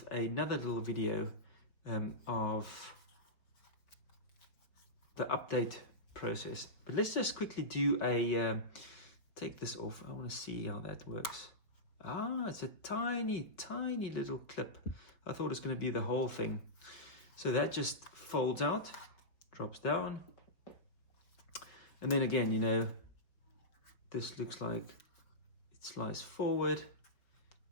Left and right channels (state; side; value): late; right; 4.9 ms